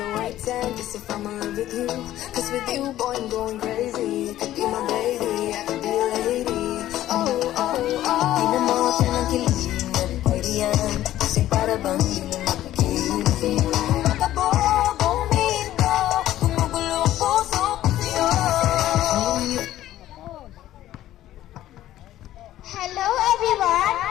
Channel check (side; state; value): right; quieter; 13.6 dB